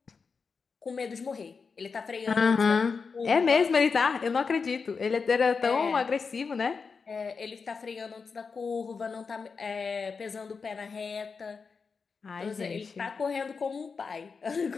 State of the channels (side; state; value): right; quieter; 5.1 dB